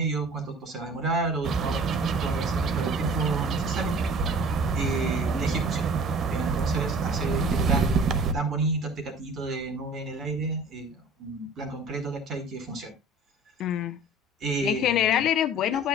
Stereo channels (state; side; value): normal; both; correlation 0.45